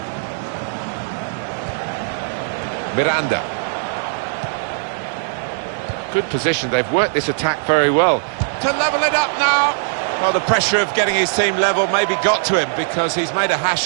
Miranda. Good position, they've worked this attack very well. To level it up now. Well, the pressure of getting his team level maybe got to him because he's made a hash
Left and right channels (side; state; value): left; silent; 66 dB below the other